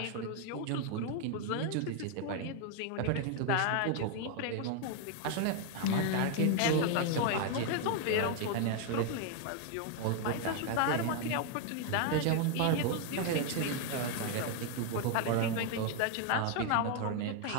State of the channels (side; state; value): both; different; correlation 0.01